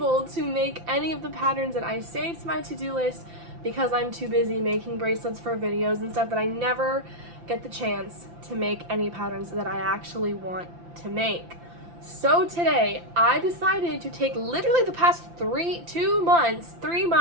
to make any of the patterns that I saved to my to-do list because I'm too busy making bracelets for videos and stuff that I never get the chance to make any patterns that I actually want to make. So today I decided to take literally the past 3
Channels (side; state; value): left; late; 5.9 ms